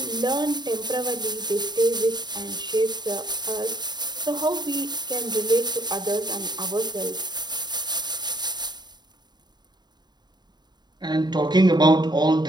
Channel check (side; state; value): left; late; 0.21 ms